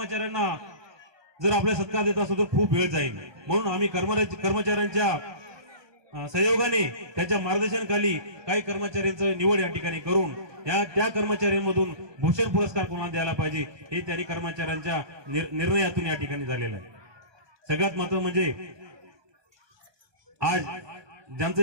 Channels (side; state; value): left; late; 1.2 ms